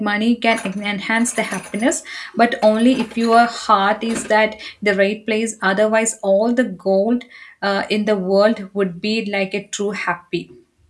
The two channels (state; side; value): identical; both; correlation 1.00